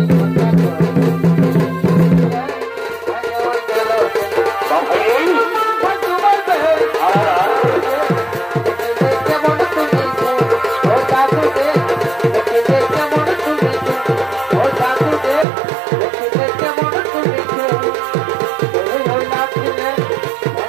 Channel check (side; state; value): left; drops out; at 15.5 s